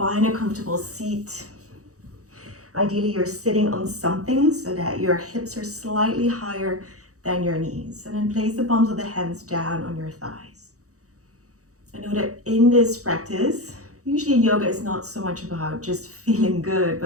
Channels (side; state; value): left; late; 0.65 ms